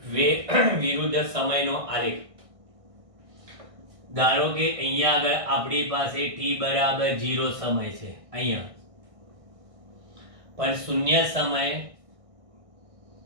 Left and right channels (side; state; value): left; late; 1.6 ms